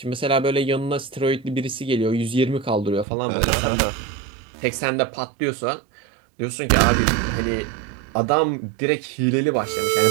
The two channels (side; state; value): left; drops out; at 3.1 s